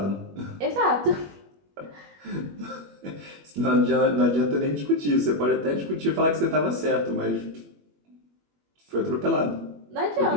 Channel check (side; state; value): left; late; 21 ms